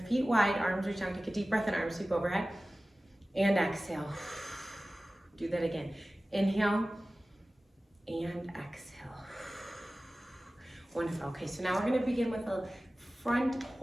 feet wide, arms reach down, take a deep breath in, arms sweep overhead, and exhale. Do that again. Inhale and exhale. Wonderful. Okay, so now we're going to begin with a front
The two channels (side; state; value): both; normal; correlation 0.97